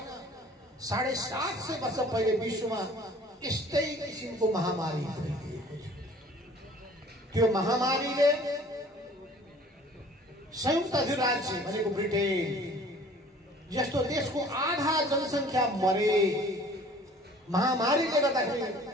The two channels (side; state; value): both; normal; correlation 0.51